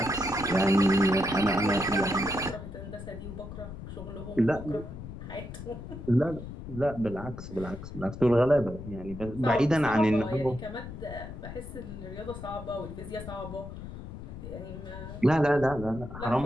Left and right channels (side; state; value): left; noise; rumble, 11 dB below the sound